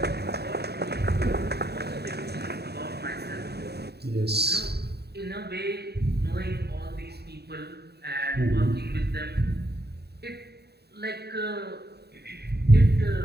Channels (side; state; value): left; late; 0.47 ms